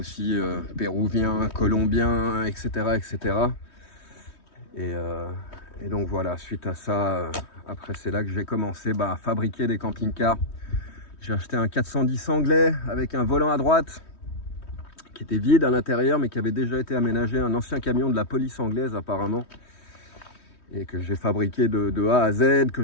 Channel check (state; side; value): late; right; 3.2 ms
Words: péruvien, colombien, etc. etc. Et donc voilà, suite à ça, après c'est là que j'ai commencé à fabriquer des camping-cars. J'ai acheté un 410 anglais avec un volant à droite, qui était vide à l'intérieur mais qui avait déjà été aménagé, un ancien camion de la police anglaise apparemment, et que j'ai fabriqué de A à Z, que